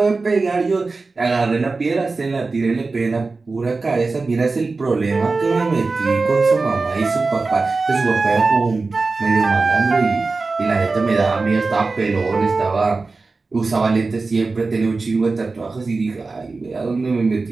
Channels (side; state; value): left; quieter; 3.8 dB